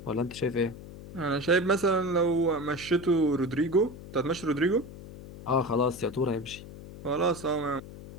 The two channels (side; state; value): left; noise; hum, 15 dB below the sound